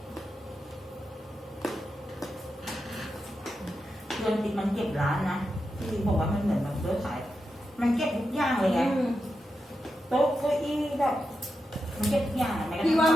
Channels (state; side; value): normal; both; correlation 0.88